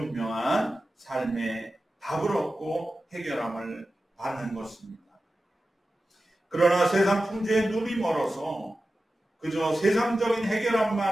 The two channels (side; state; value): both; normal; correlation 0.93